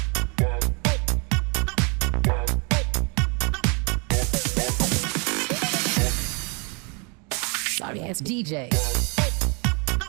Sorry ass DJ.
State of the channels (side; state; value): left; quieter; 33.6 dB